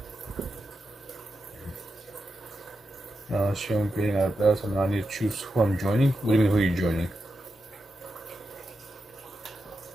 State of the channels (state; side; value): normal; both; correlation 0.88